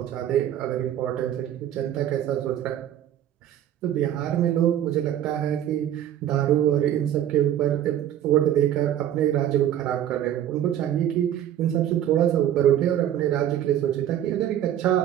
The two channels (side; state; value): left; quieter; 11.1 dB